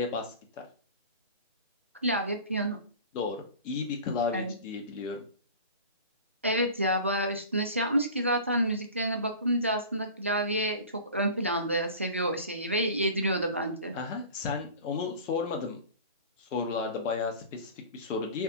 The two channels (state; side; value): inverted; both; correlation -0.38